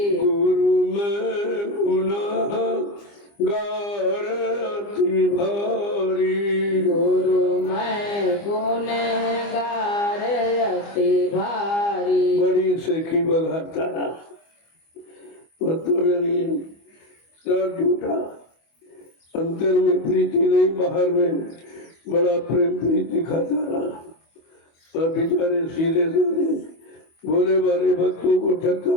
गुरु में गुनाह गार अति भारी, गुरु मैं गुनहगार अति भारी। बड़ी सेखी बघाता रहा, मतलब यानी सब झूठा, अंतर में प्रीति नहीं, बाहर में बड़ा प्रेम प्रीति खाता रहा और बेचारे सीधे साधे भोले बाले भक्तों को ठगता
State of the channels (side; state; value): right; late; 25 ms